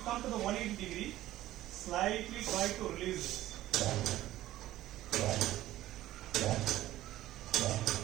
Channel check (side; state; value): left; quieter; 14.8 dB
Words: to the 180 degree, slightly try to release this.